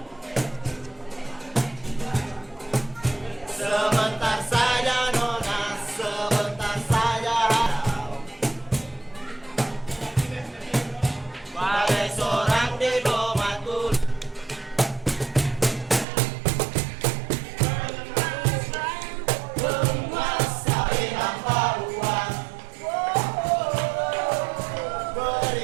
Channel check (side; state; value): left; drops out; at 16.1 s